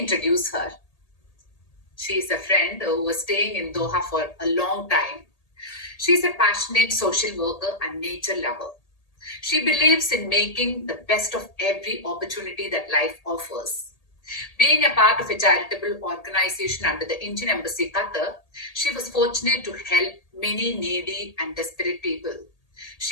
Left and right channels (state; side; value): late; right; 1.8 ms